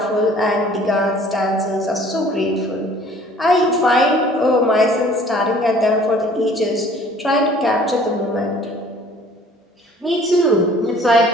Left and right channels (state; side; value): normal; both; correlation 0.53